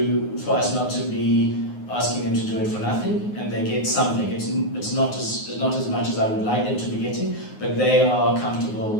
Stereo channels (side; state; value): right; late; 9.5 ms